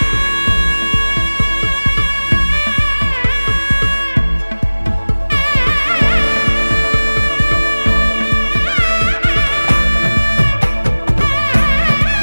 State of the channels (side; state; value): both; inverted; correlation -1.00